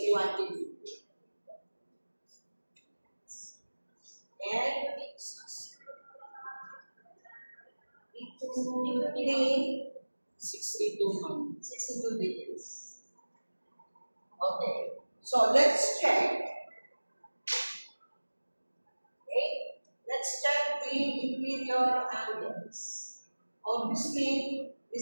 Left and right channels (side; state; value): both; inverted; correlation -1.00